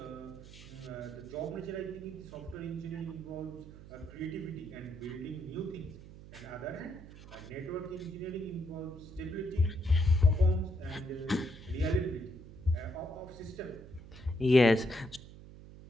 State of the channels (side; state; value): right; noise; hum, 16 dB below the sound